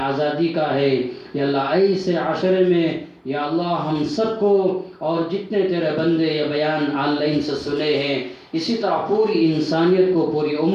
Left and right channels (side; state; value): both; identical; correlation 1.00